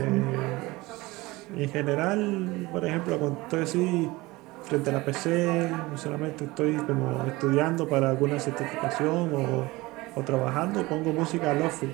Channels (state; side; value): quieter; left; 21.2 dB